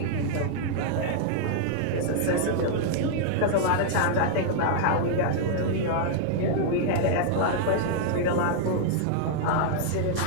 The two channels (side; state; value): both; different; correlation -0.01